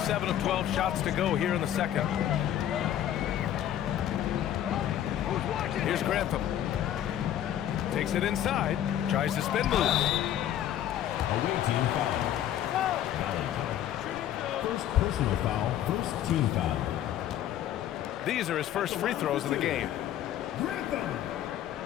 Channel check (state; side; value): quieter; right; 11.3 dB